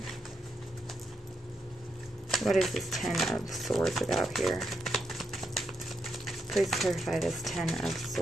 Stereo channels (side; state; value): both; normal; correlation 0.82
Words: What is this Ten of Swords about here? Please clarify this Ten of